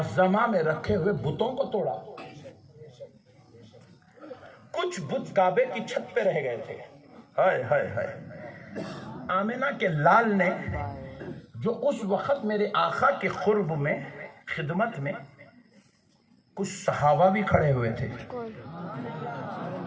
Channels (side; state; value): both; identical; correlation 1.00